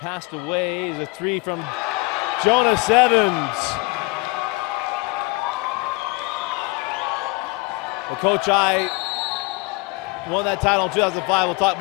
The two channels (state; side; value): quieter; right; 25.1 dB